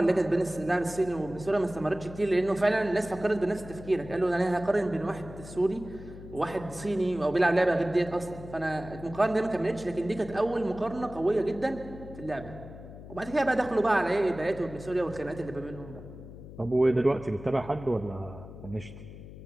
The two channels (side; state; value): left; noise; hum, 14 dB below the sound